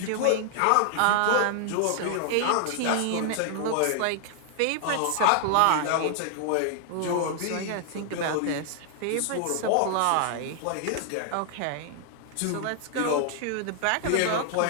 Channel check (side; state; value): both; different; correlation 0.00